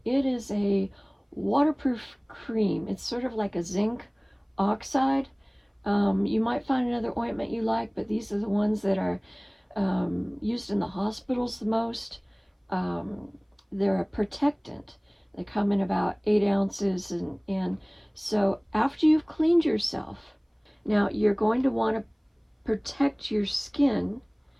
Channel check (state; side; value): identical; both; correlation 1.00